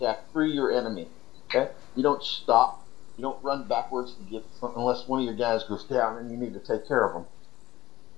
through your enemy. Okay? You don't stop. You don't run backwards to get something unless one of your guys goes down and you need to take care of them.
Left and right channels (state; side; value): quieter; right; 16.4 dB